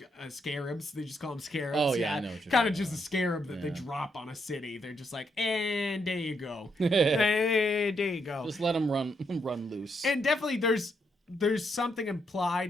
scarabs? They just call them scarabs. Oh yeah, I know. Kind of just a scarab that they drop on a city. They're just like, and there you go, there you go. Just let them run loose. And definitely, there's something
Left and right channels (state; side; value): normal; both; correlation 0.78